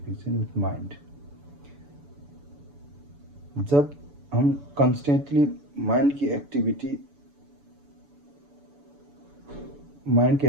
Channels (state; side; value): late; left; 7.0 ms